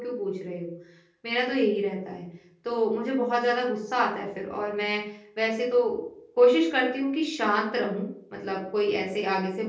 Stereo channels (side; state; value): both; identical; correlation 1.00